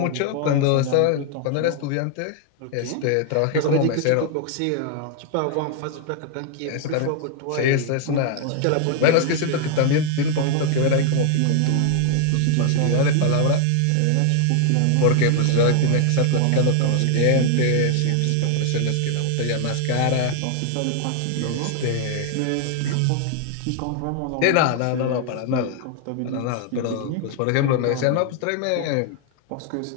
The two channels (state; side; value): different; both; correlation 0.00